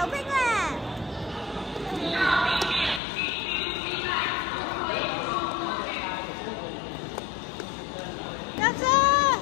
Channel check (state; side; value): drops out; right; at 3.0 s